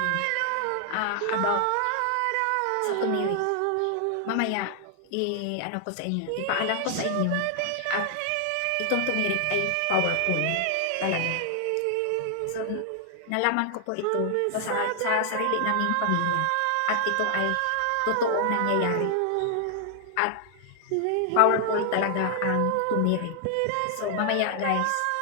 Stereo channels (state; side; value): different; both; correlation 0.00